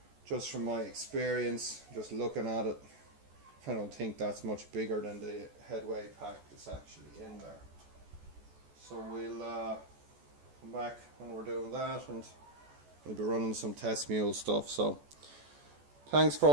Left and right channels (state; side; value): late; left; 14 ms